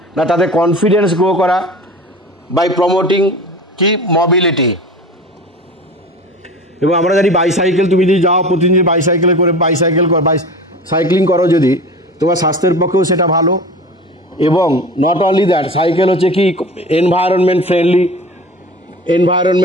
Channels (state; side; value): normal; both; correlation 0.36